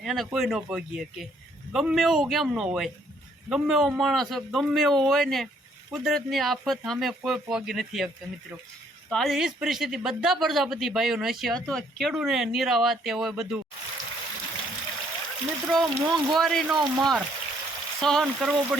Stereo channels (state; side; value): normal; both; correlation 0.66